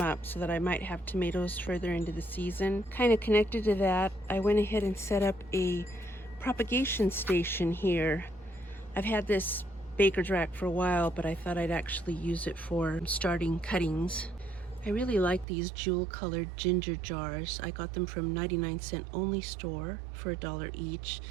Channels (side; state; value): left; drops out; at 15.5 s